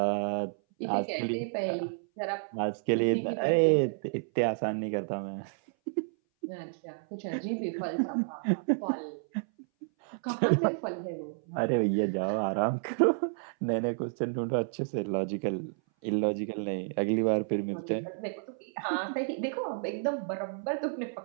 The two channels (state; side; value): silent; left; 57 dB below the other